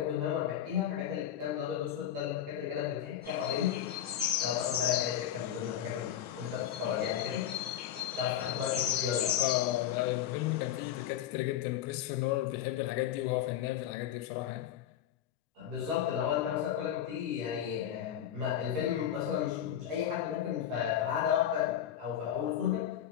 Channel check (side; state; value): right; quieter; 10.7 dB